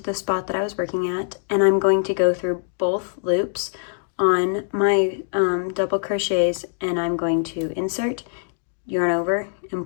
the spot that I was working at, and I'm going to go through both loops on my double crochets, and I'm going to insert, yarn over,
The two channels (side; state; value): right; silent; 63 dB below the other